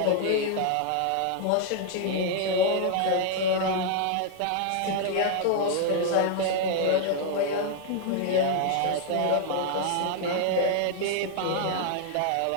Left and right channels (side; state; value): both; different; correlation 0.00